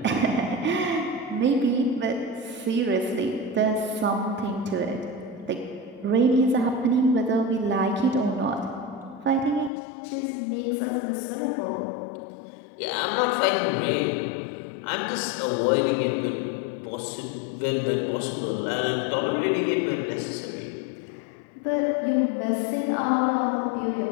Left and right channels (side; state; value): right; drops out; at 9.7 s